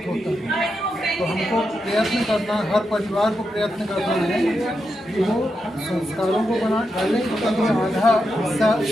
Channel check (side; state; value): both; normal; correlation 0.86